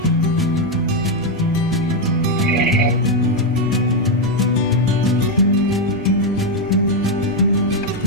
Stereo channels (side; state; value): left; noise; rumble, 18 dB below the sound